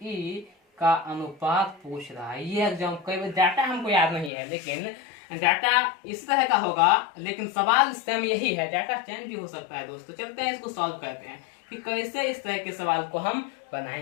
का अनुपात पूछ रहा है। ये एग्जाम कई बार डाटा हमको याद नहीं है, लेकिन डाटा इस तरह का होगा, लेकिन सवाल सेम यही है, डाटा चेंज भी हो सकता है दोस्तों। चलते हैं इसको सॉल्व करते हैं कि कैसे इस तरह के सवाल को हम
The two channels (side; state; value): right; drops out; at 4.3 s